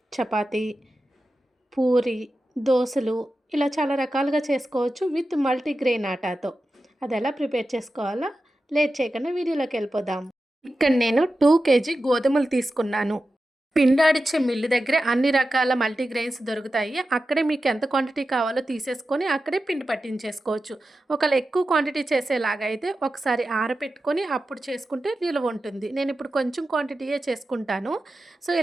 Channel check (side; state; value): both; normal; correlation 0.92